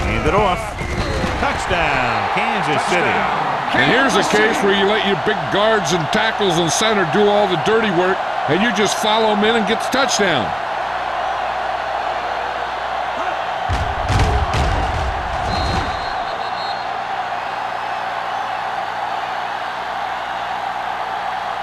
Hand it off. Touchdown, Kansas City. And here's a case where you let your big guards and tackles and center do all the dirty work, and you just follow them in and get the touchdown.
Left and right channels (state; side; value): identical; both; correlation 1.00